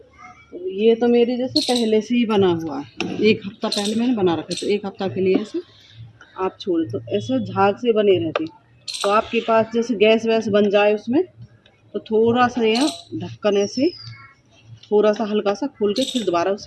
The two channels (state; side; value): identical; both; correlation 1.00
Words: तो ये तो मेरी जैसे पहले से ही बना हुआ है, 1 हफ्ता पहले मैंने बना रखा। तो 1 हफ्ता के लिए ऐसे आप छोड़, तो ऐसे झाग से बने रहती। तो आपके पास जैसे गैस वैस बन जाए उसमें, तो थोड़ा सा यह ढक्कन ऐसे थोड़ा सा हल्का सा खोल के फिर दोबारा